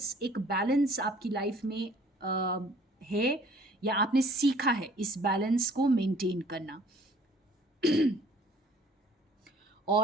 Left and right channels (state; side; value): normal; both; correlation 0.55